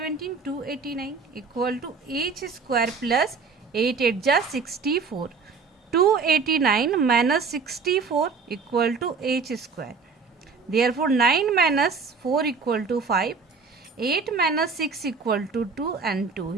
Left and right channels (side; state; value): left; quieter; 5.0 dB